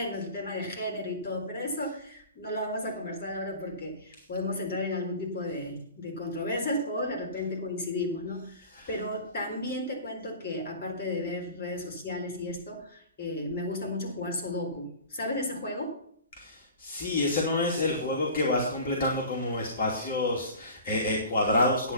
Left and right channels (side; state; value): both; inverted; correlation -0.39